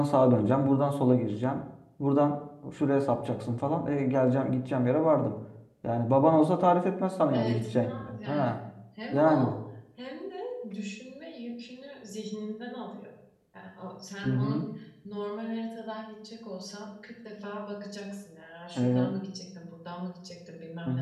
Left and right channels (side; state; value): both; identical; correlation 1.00